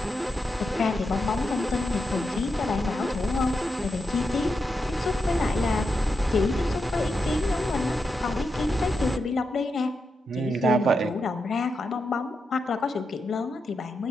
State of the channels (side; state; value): both; normal; correlation 0.86